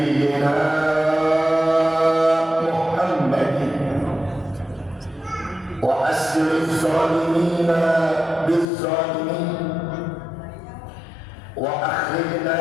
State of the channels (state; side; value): drops out; right; at 8.7 s